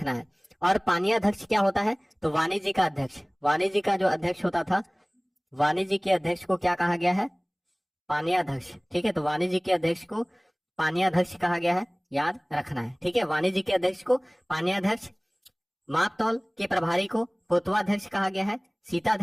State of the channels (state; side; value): identical; both; correlation 1.00